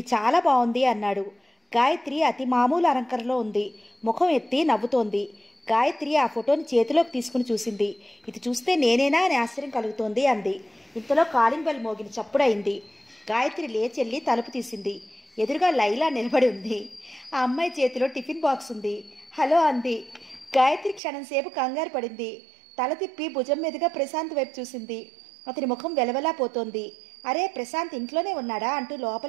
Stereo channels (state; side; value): drops out; left; at 21.0 s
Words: చాలా బాగుంది అన్నాడు. గాయత్రి అతి మామూలు అలంకరణలో ఉంది. ముఖం ఎత్తి నవ్వుతోంది. గాయత్రి ఆ ఫోటోని చేతిలోకి తీసుకుని చూసింది. ఇది చూస్తే నేనేనా అని ఆశ్చర్యం కలుగుతోంది అంది. ఇంతలో కాలింగ్ బెల్ మోగిన చప్పుడైంది. గాయత్రి లేచెల్లి తలుపు తీసింది. ఎదురుగా లైలా నిలబడి ఉంది. ఆ అమ్మాయి చేతిలో టిఫిన్ బాక్స్ ఉంది. హలో అంది. గాయత్రి క్షణంసేపు కంగారు పడింది. తల తిప్పి భుజం మీదుగా ప్రశాంత్ వైపు చూసింది. అతని ముఖం వెలవెలా పోతోంది. అరే, ప్రశాంత్ ఇంట్లోనే ఉన్నాడా అంటూ